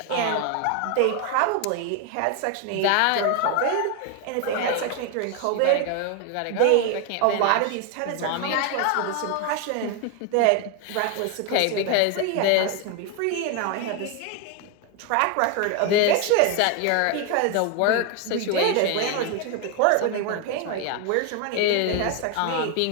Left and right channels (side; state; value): both; different; correlation 0.01